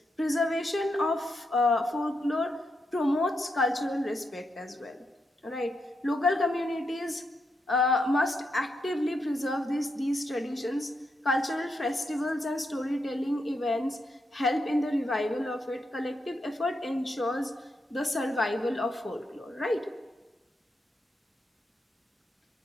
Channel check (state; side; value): normal; both; correlation 0.82